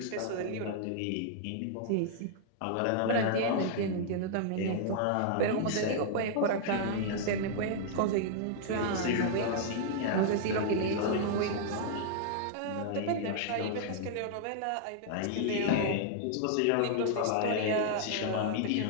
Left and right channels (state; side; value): different; both; correlation -0.01